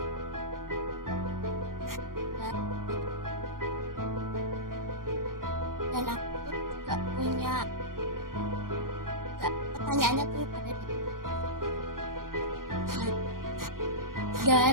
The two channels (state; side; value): late; left; 0.91 ms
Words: dan aku juga punya pertanyaannya tuh pada di